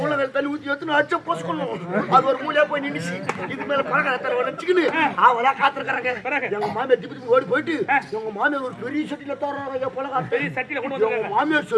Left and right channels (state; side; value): identical; both; correlation 1.00